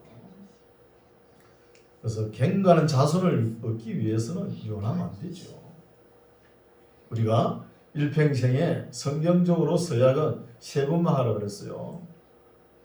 그래서 경건한 자손을 얻기 위해서는 이혼하면 안 되죠. 우리가 일평생에 성경적으로 서약은 세 번만 하라 그랬어요.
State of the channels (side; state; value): both; identical; correlation 1.00